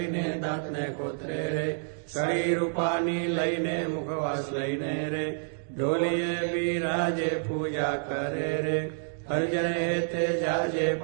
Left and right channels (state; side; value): silent; left; digital silence